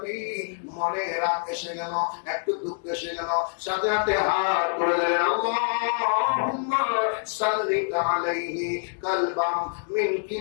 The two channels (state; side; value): silent; right; digital silence